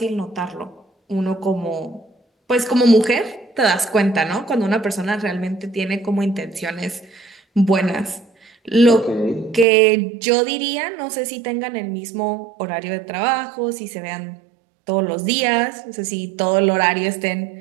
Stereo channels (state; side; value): drops out; left; at 9.7 s